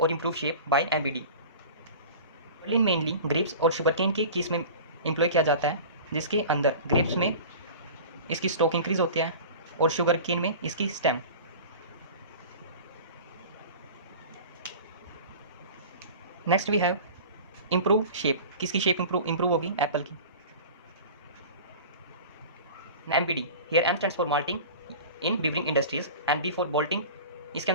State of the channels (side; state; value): both; inverted; correlation -0.37